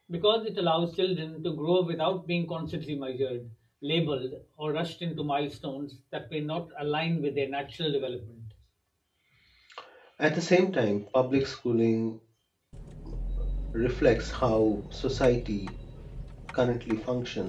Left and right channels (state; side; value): identical; both; correlation 1.00